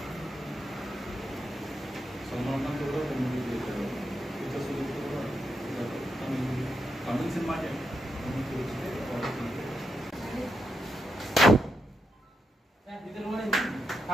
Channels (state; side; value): normal; both; correlation 0.84